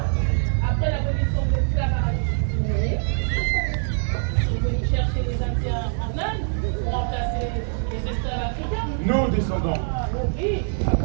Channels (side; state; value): left; silent; digital silence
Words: Après l'abolition de l'esclavage, ils veulent chercher les Indiens en Inde pour remplacer les esclaves africains. Nos descendants. Oui.